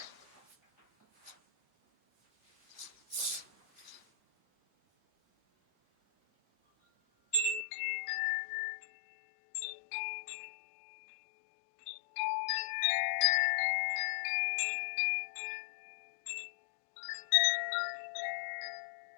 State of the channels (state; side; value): drops out; right; at 7.7 s